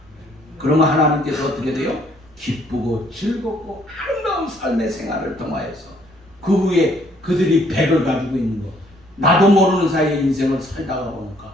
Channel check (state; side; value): noise; right; rumble, 28 dB below the sound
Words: 그러면 하나님께서 어떻게 돼요? 기쁘고 즐겁고 아름다운 삶의 생활을 통하여서 그 후에 그들이 100을 가지고 있는 거 나도 모르는 사이에 인생을 살다가 보니까